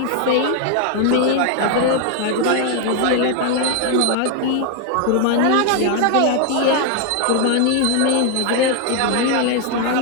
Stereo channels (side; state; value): both; different; correlation 0.00